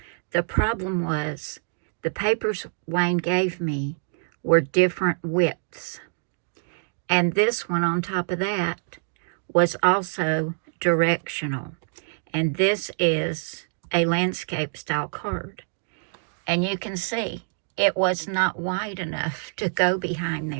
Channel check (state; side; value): silent; left; digital silence